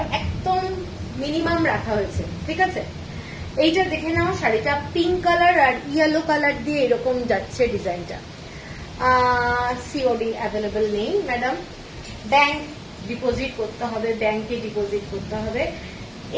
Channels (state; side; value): identical; both; correlation 1.00